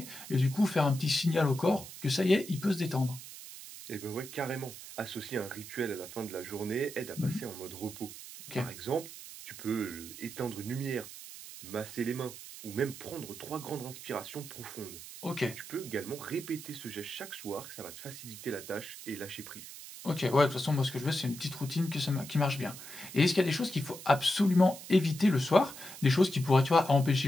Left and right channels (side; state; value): right; noise; hiss, 13 dB below the sound